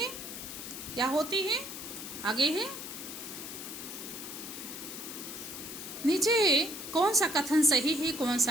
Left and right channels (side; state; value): left; noise; hiss, 9 dB below the sound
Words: या होती है। आगे है नीचे कौन सा कथन सही है, कौन